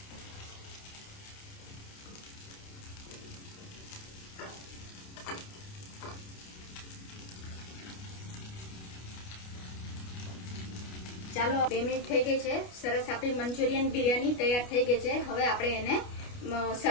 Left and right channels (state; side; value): late; right; 29 ms